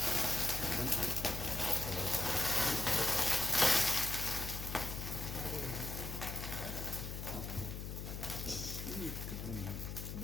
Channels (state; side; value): noise; left; hum, 6 dB below the sound